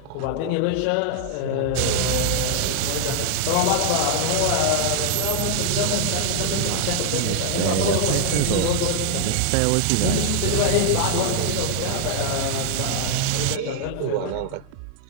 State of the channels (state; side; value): different; both; correlation 0.00